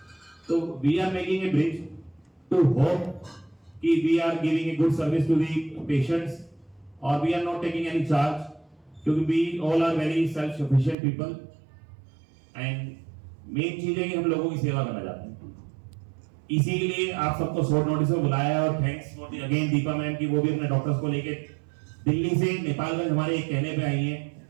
तो we are making a bridge to hope कि we are giving a good service to the patients और we are not taking any charge, क्योंकि we all are very self sufficient people and main चीज है कि हम लोगों की सेवा करना चाहते हैं। इसीलिए आप सबको शॉर्ट नोटिस में बुलाया और thanks for the again Deepa ma'am की वो भी अपने डॉक्टर्स को लेके दिल्ली से नेपालगंज हमारे एक कहने पे आई हैं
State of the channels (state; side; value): drops out; left; at 11.0 s